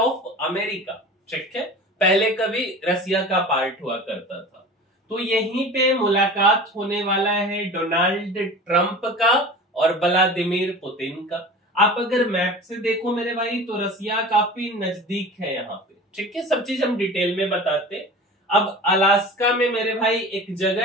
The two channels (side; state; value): both; normal; correlation 0.37